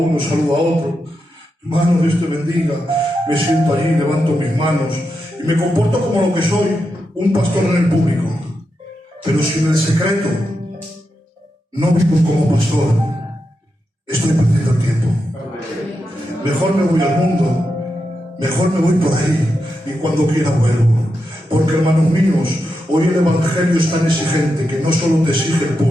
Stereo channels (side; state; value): both; normal; correlation 0.87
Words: saludo a otro, hermano, Dios te bendiga, me siento allí, levanto mis manos y me comporto como lo que soy, un pastor en el público. Pero si en el secreto no vivo como pastor, estoy perdiendo el tiempo. Mejor me voy al mundo, mejor me voy por ahí y cuando quiera vuelvo. Porque, hermanos míos, hoy el Evangelio es tan exigente que no solo te exige el